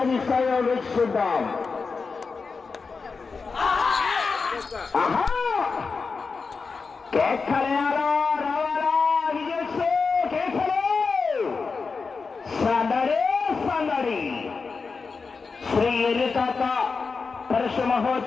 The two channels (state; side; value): quieter; right; 4.7 dB